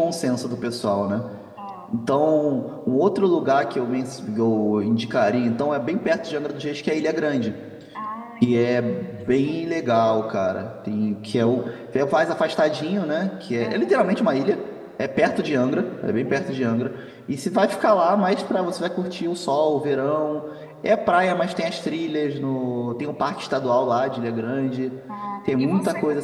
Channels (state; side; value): identical; both; correlation 1.00